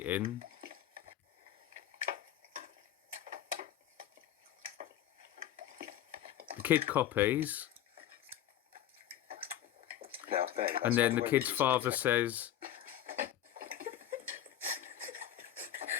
The kid copies. Now, Ben, that's And then not the way kid's we eat father at the says,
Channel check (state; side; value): quieter; right; 11.5 dB